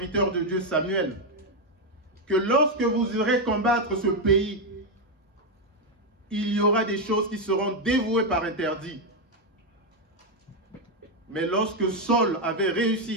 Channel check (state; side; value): normal; both; correlation 0.04